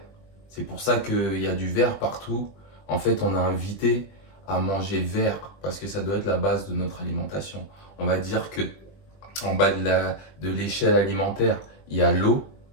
C'est pour ça qu'il y a du vert partout. En fait, on a invité à manger vert parce que ça doit être la base de notre alimentation. On va dire que en bas de l'échelle alimentaire, il y a l'eau,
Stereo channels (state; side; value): late; right; 21 ms